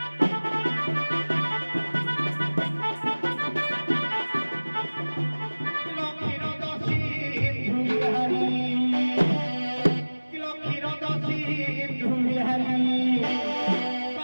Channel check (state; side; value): inverted; both; correlation -1.00